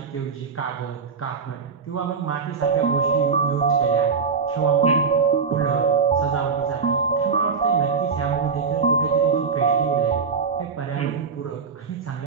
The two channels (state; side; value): quieter; left; 5.5 dB